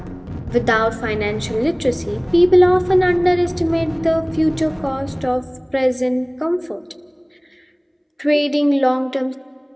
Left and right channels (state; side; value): identical; both; correlation 1.00